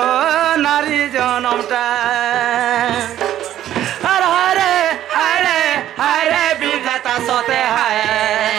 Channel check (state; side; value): quieter; left; 12.1 dB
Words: নারী জনমটা আর হারে বিধাতা সতে হায়